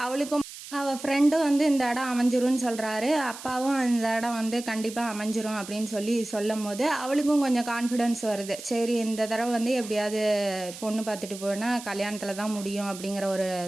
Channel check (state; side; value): noise; right; hiss, 13 dB below the sound